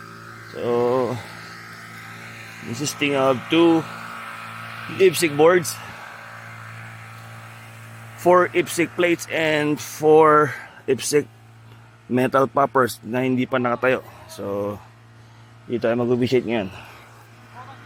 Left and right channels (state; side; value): identical; both; correlation 1.00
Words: So, consisting of 2 IPSC boards, 4 IPSC plates, and 4 IPSC metal poppers na hindi pa nakatayo. So, dito tayo mag-officiate ngayon.